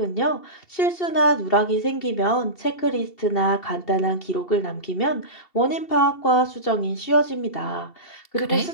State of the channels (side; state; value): right; late; 2.7 ms